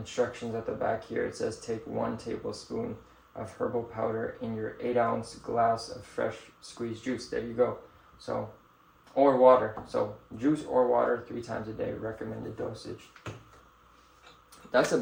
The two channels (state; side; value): identical; both; correlation 1.00